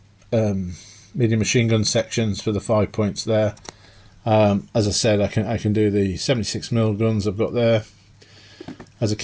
medium machine gun sections for the 5 points there. As I said, I can do the 76mm guns I've got there as a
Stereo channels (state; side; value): identical; both; correlation 1.00